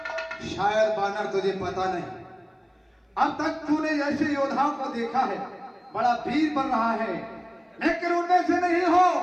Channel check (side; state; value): both; identical; correlation 1.00